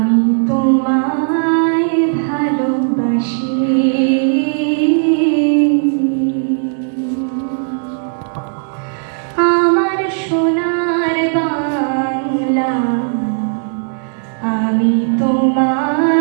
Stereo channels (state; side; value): silent; left; 68 dB below the other